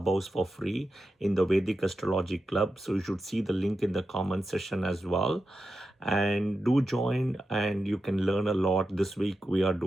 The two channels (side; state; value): both; normal; correlation 0.90